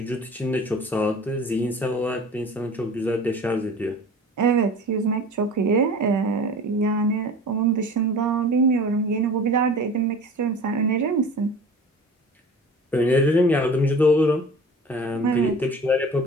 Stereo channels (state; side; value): normal; both; correlation 0.41